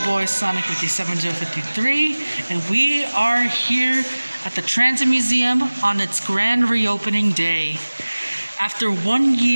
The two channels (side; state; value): both; inverted; correlation -1.00